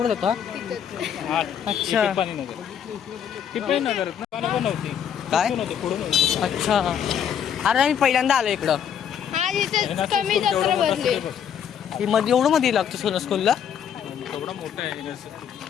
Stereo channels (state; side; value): quieter; right; 8.6 dB